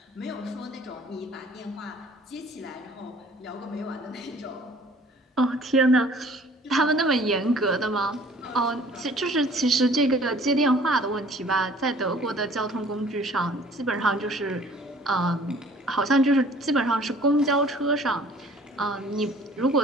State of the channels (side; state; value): both; normal; correlation 0.52